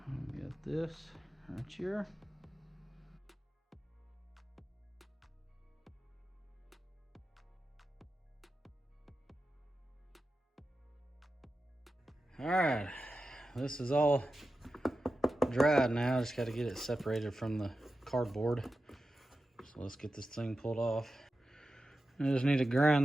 Got this right here. All right, this is all dried now. Just got to get it separated from the cardboard. So let's get this thing pulled off. I just need to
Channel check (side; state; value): both; normal; correlation 0.92